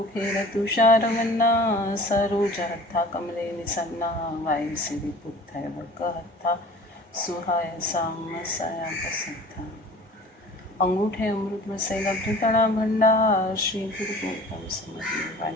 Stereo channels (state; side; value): normal; both; correlation 0.45